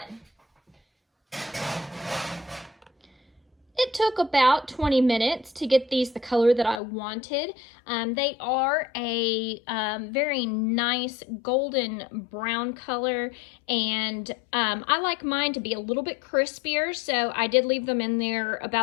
It took about 20 minutes to get these the color that I wanted. They are a very nice golden brown color, and I like mine to be a little bit crispier, so I did leave them in there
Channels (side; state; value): right; drops out; at 6.8 s